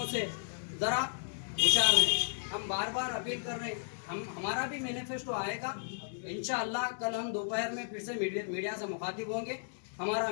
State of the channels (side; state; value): right; silent; digital silence